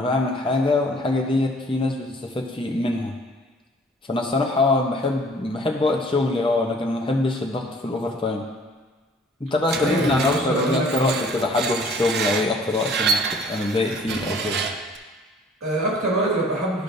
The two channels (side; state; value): both; normal; correlation 0.54